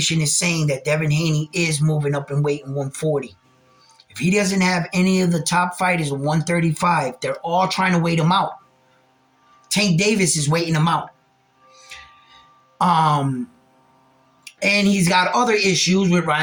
is saying that Devin Haney is moving up in weight in 140. If he doesn't have any of the top fighters in 135, they're all trying to wait him out. Tank Davis is waiting him out. And he's got other issues with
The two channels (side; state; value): both; identical; correlation 1.00